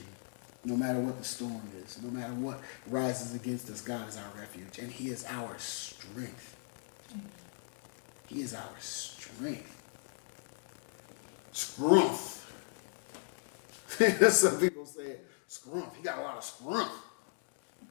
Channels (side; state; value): right; silent; digital silence